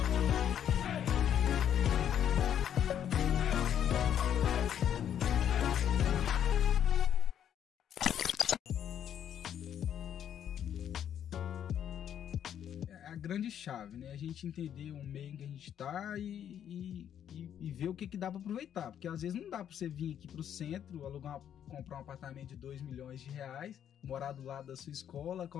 A grande chave, né? A gente entender o meio em que a gente tá e ver o que dá para aproveitar. Porque às vezes não dá para você vir aqui pro centro, comprar um apartamento de 2 milhões de reais, morar do lado da sua escola,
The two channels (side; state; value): right; quieter; 9.6 dB